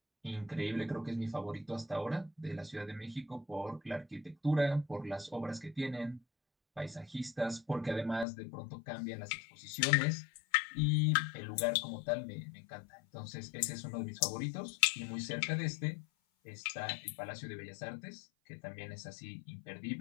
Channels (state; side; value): drops out; right; at 8.2 s